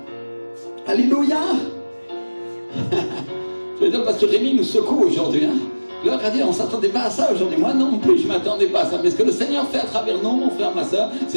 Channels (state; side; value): inverted; both; correlation -1.00